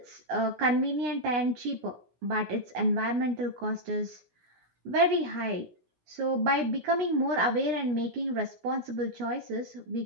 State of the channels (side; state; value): left; late; 16 ms